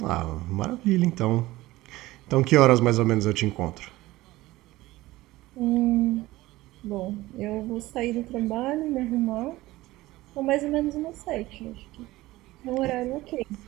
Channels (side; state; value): left; quieter; 18.1 dB